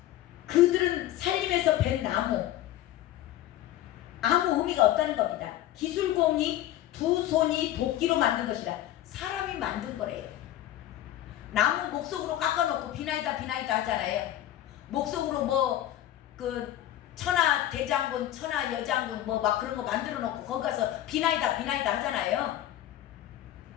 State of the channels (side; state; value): right; quieter; 13.2 dB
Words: 그들은 살림에서 벤 나무, 아무 의미가 없다는 겁니다. 기술공이 두 손이 도끼로 만든 것이라. 사람이 만든 거래요. 나무 목석으로 깎아놓고 비나이다 하잖아요. 목석으로 뭐 그 천하 대장군, 천하 여장군 뭐 막 그런 거 만들어 놓고 거기 가서 비나이다 하잖아요.